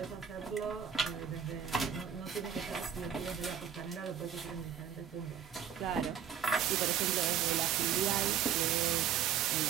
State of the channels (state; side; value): quieter; left; 8.5 dB